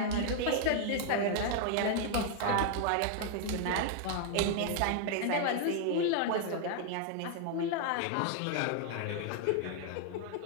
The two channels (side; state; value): both; different; correlation 0.00